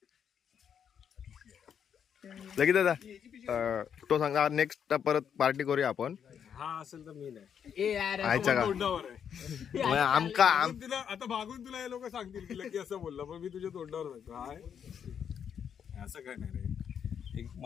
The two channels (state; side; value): quieter; right; 8.0 dB